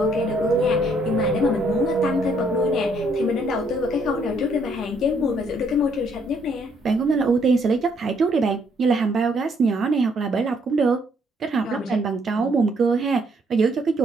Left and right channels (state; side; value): normal; both; correlation 0.69